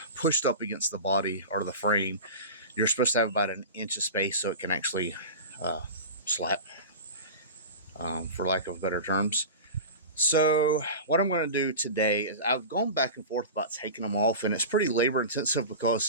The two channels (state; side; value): inverted; both; correlation -0.30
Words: pushed up against the body or the frame. You're supposed to have about an inch of space so it can actually slap, for lack of better terms. So what I'm going to do today is I've gone back and forth about taking them off, and it's pretty labor intensive